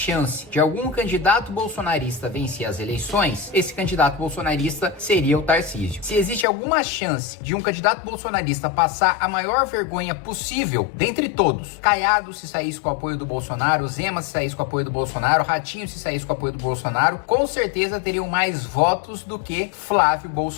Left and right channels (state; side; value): drops out; right; at 6.5 s